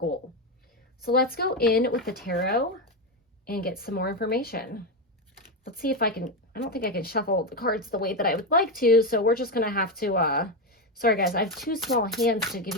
So let's go in with the tarot and get some more information. Let's see if I don't think I can shuffle the cards the way that I would like to, so we're just going to have to, sorry guys, I have too small hands to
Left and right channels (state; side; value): normal; both; correlation 0.10